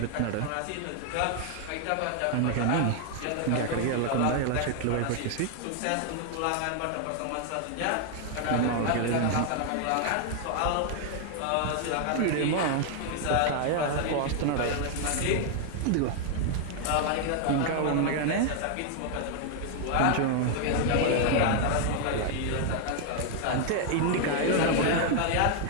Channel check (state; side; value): different; both; correlation 0.00